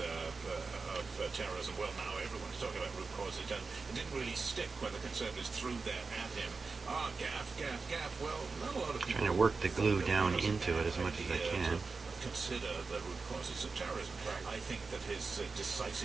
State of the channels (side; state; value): left; quieter; 4.3 dB